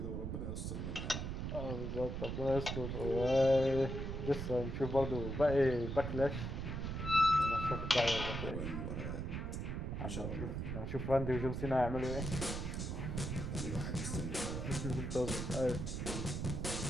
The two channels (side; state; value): right; noise; rumble, 3 dB below the sound